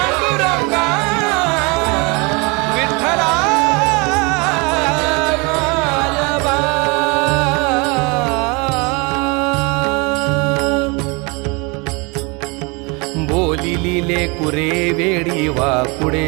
विठ्ठला माय बापा बोलिले कुरे वेडी वाकुडे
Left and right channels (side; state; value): left; quieter; 29.0 dB